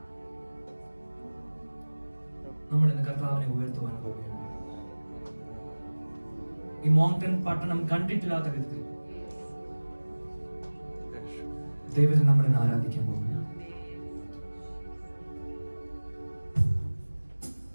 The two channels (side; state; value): both; inverted; correlation -1.00